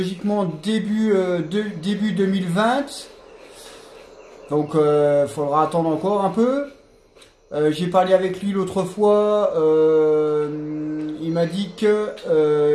début 2020. Donc il faudra attendre encore un peu. J'ai parlé avec lui l'autre fois. Il m'a dit que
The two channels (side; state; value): both; identical; correlation 1.00